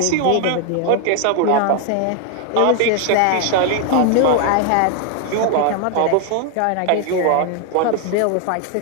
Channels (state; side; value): different; both; correlation 0.00